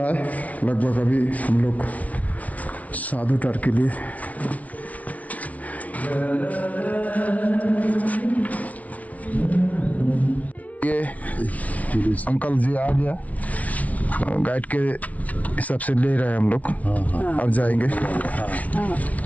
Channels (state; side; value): late; right; 0.069 ms